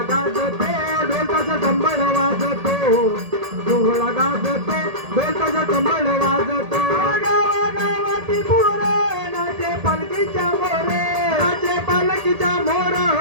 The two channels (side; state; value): left; late; 1.8 ms